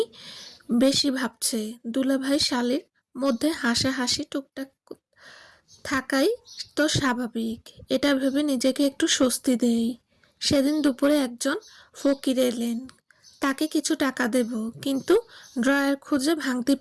বেশি ভাবছে। দুলাভাই শালীর মধ্যে হাসাহাসি টুকটাক থাকাই তো স্বাভাবিক, এটা ভেবে নিজেকে একটু স্বস্তি দেই। সেদিন দুপুরে একজন ফকির এলেন, তাকে কিছু টাকা দেব, কিন্তু ড্রয়ার খুঁজে ভাঙতে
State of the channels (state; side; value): identical; both; correlation 1.00